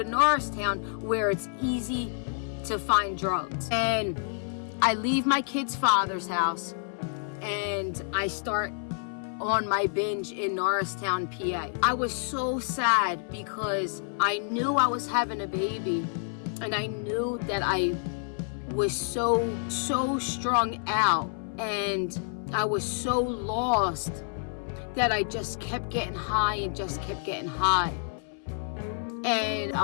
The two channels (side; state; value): right; silent; 58 dB below the other